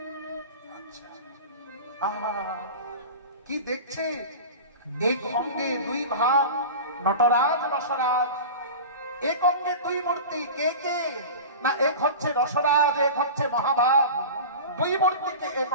কি দেখছে? এক অঙ্গে দুই ভাব, নটরাজ রসরাজ, এক অঙ্গে দুই মূর্তি, কে কে? না এক হচ্ছে রসরাজ, এক হচ্ছে মহাভাব, দুই মূর্তিকে এক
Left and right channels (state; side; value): inverted; both; correlation -0.31